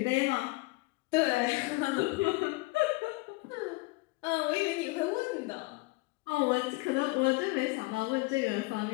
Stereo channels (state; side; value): quieter; right; 23.6 dB